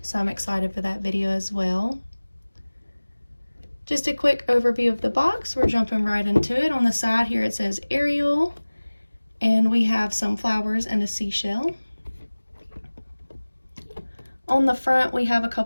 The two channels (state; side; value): inverted; both; correlation -1.00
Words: So I'm excited for that video as well. Just a quick overview of the box. We're jumping right into it. On the side here it says Ariel, and we have some flowers and a seashell. On the front we have a